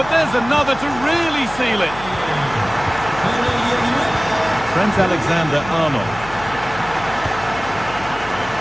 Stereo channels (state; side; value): noise; left; hum, 15 dB below the sound